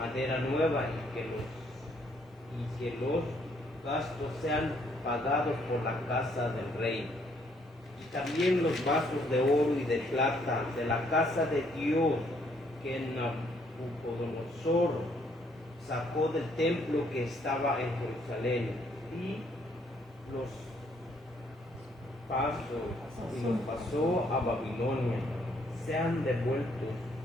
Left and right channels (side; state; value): both; normal; correlation 0.68